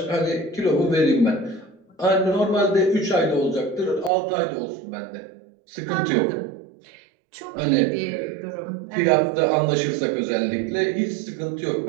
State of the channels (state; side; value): drops out; left; at 4.1 s